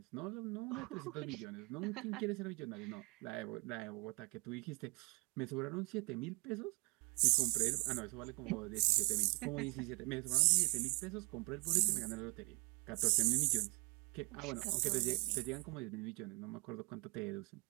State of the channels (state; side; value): quieter; left; 30.3 dB